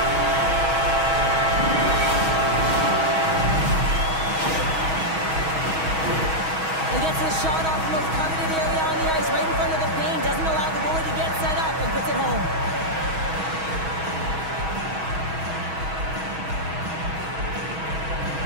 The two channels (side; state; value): left; late; 6.3 ms